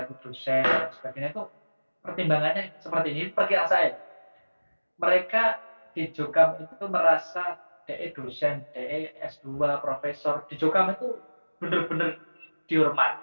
itu dosen dan sebagainya itu pertimbangannya seperti ini. Perkiraan saya, mereka di Jokam itu merasa DE dosen, DE S2, profesor di Jokam itu benar-benar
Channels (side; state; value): both; inverted; correlation -1.00